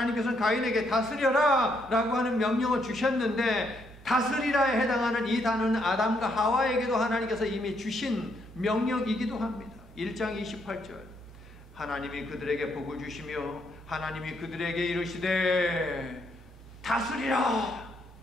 가인에게 다스려라 라고 하는 명령을 주셨는데, 다스리라에 해당하는 이 단어는 아담과 하와에게도 하나님께서 이미 주신 명령이기도 합니다. 1장 28절 하나님이 그들에게 복을 주시며 하나님이 그들에게 이르시되 다스리라,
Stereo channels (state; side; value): normal; both; correlation 0.74